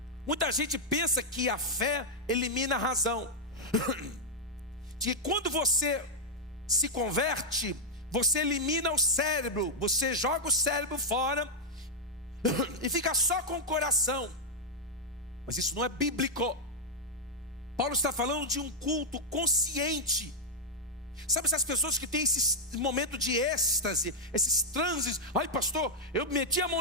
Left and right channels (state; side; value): normal; both; correlation -0.04